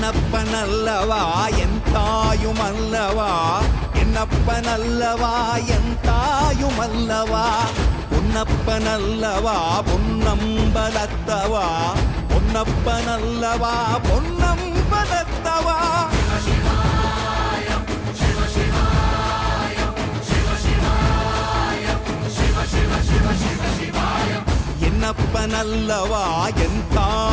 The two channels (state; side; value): identical; both; correlation 1.00